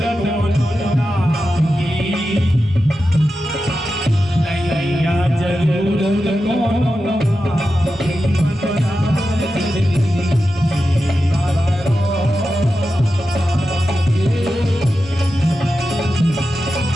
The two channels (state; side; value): normal; both; correlation 0.91